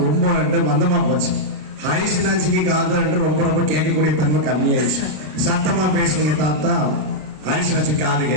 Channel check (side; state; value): left; late; 33 ms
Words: ரொம்ப மந்தமா போச்சு. ஹரிசனாச்சிக்கு காது ரொம்ப கேட்கக்கூடிய தன்மை கம்மியாயிடுச்சு. சத்தமா பேசுனீங்க தாத்தா, ஹரிசனாச்சி காது